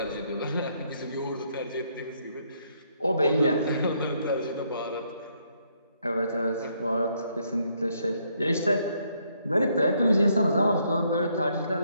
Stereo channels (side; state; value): both; inverted; correlation -0.72